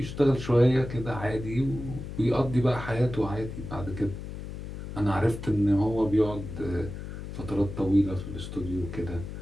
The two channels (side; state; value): left; noise; hum, 9 dB below the sound